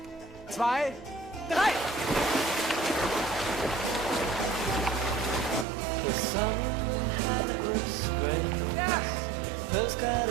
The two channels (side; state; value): left; drops out; at 5.7 s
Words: 2, 3! The sun was great. Ja! Postcard